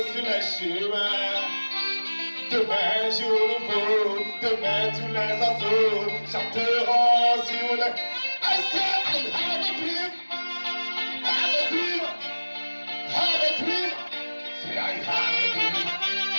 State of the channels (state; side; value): inverted; both; correlation -1.00